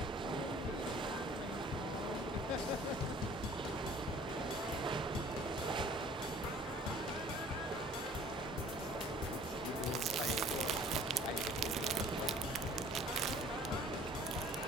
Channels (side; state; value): both; normal; correlation 0.51